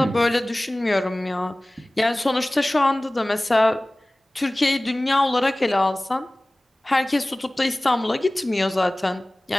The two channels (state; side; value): normal; both; correlation 0.98